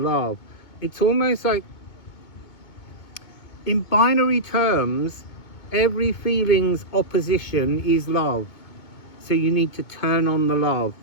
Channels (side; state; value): right; late; 2.2 ms